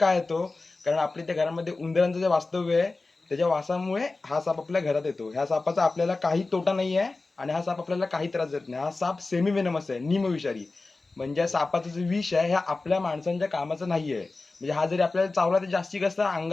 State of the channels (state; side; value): quieter; right; 3.5 dB